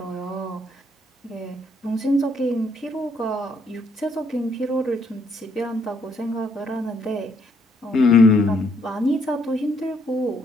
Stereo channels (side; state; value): both; normal; correlation 0.70